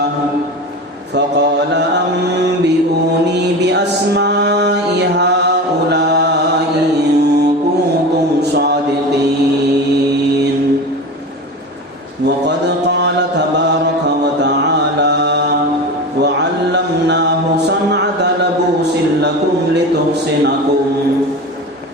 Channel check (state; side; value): normal; both; correlation 0.28